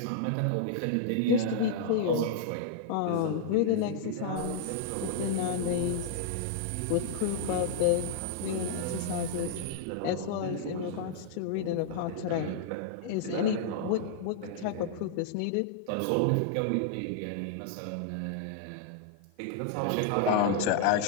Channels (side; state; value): both; different; correlation -0.01